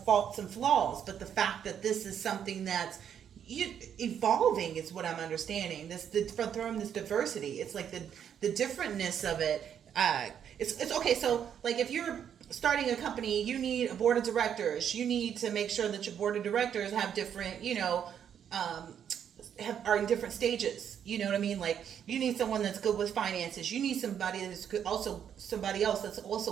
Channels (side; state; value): left; quieter; 8.7 dB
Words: and flaws. But the fact that this is something that's evolving is what I'm understanding. From this diversity, it's like the differentness of it. It's okay. So, like, if you're starting a company, you need a board of directors. You need to make sure that your board of directors have different, are in different stages. You know what I mean? Like, you need someone that's good with finances. You need somebody that's good, somebody else that's